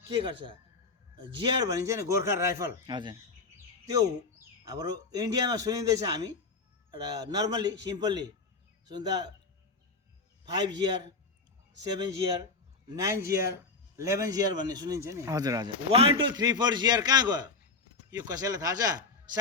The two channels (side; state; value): right; quieter; 4.1 dB